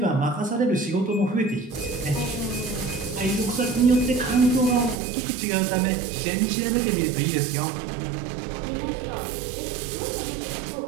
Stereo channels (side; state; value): left; drops out; at 5.0 s